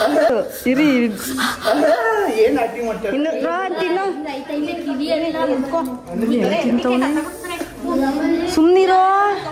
ಏನ್ ಆಕ್ಟಿಂಗ್ ಮಾಡ್ತಾರೆ? ಇನ್ನು ರೋಹನ್ ತಿನ್ನು. ಸುಮ್ನಿರೋ.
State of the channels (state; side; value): identical; both; correlation 1.00